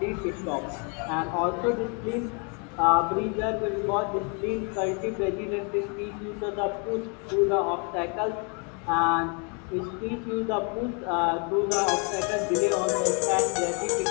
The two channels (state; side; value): quieter; right; 36.1 dB